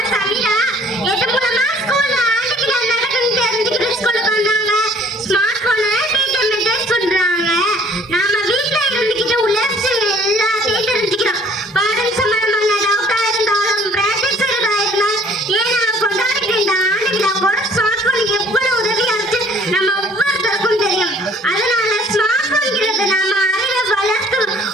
சமீரா எது மூலமா ஸ்கூல்ல ஆண்டுக்கு நடக்குன்னு தெரிஞ்சுக்கிட்டு ஸ்கூலுக்கு வந்தாங்க. ஸ்மார்ட் போனை டீச்சர் மெசேஜ் பண்றாங்க. நாம வீட்டுல இருந்துகிட்டு உள்ள விஷயங்கள் எல்லாத்தையும் தெரிஞ்சுக்கிறோம். பாடம் சம்பந்தமான டவுட்டா இருந்தாலும் பிராக்டிஸ் இருந்தாலும் ஏன் நான் கொண்டாடிட்டு இந்த ஆண்டு விழா கூட ஸ்மார்ட் போன் எவ்வளவு உதவியா இருக்கு நம்ம ஒவ்வொருத்தருக்கும் தெரியும். அதனால ஸ்மார்ட் போன்ங்கிறது நம்ம அறிவை வளர்த்து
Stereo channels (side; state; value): both; normal; correlation 0.56